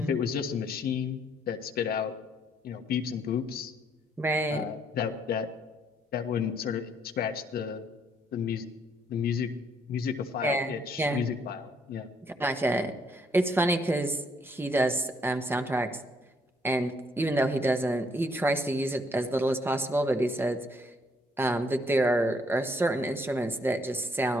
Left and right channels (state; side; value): normal; both; correlation 0.68